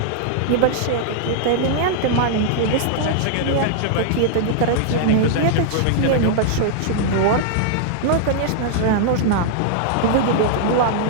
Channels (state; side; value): different; both; correlation -0.01